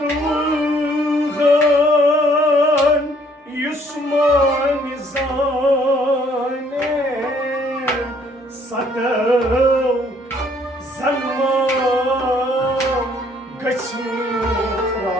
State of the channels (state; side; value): normal; both; correlation 0.63